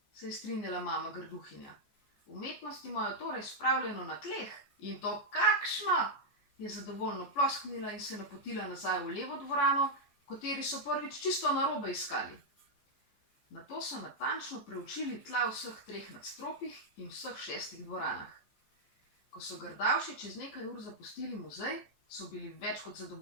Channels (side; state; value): right; late; 14 ms